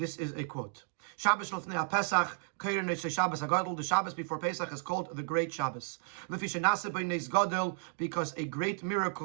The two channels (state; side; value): silent; left; digital silence